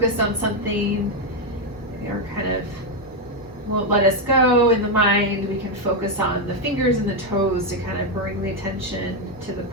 on something, or kind of won't let us go in the mind, we can focus on the fingers and the toes to kind of bring the attention to the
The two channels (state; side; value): normal; both; correlation 0.04